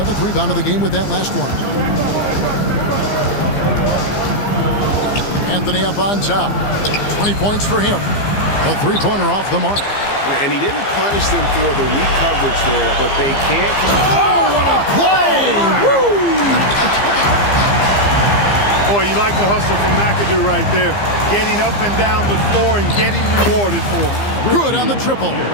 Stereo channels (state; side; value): late; right; 15 ms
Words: rebound of the game with that last one. Anthony up on top. 20 points for him. A 3-pointer off the mark. And he didn't punish them for the weak coverage there, but they can't. Oh, what a play! Woo! Boy, you like the hustle from McAdoo right there. Getting up and down the floor and getting rewarded for it. Good on the triple.